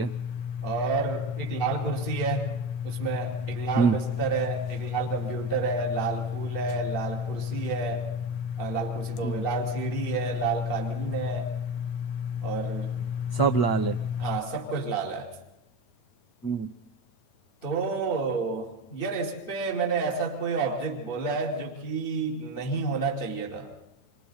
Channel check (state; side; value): late; right; 9.1 ms